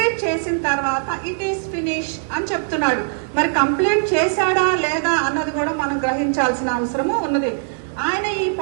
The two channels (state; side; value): silent; left; digital silence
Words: చేసిన తర్వాత ఇట్ ఈస్ ఫినిష్ అని చెప్తున్నాడు. మరి కంప్లీట్ చేశాడా లేదా అన్నది కూడా మనం గ్రహించాల్సిన అవసరము ఉన్నది. ఆయన